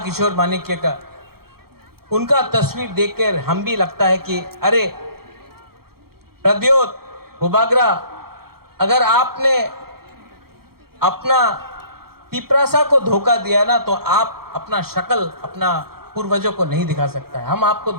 माणिक्य का। उनका तस्वीर देखकर हम भी लगता है कि अरे प्रद्योत भूबागरा, अगर आपने अपना तिपरासा को धोखा दिया ना, तो आप अपना शक्ल अपना पूर्वजों को नहीं दिखा सकता है। हम आपको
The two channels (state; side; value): late; left; 0.94 ms